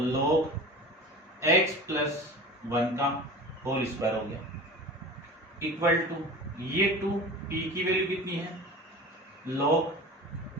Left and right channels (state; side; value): normal; both; correlation 0.35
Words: log x प्लस 1 का होल स्क्वायर हो गया, इक्वल टू ये 2, p की वैल्यू कितनी है, log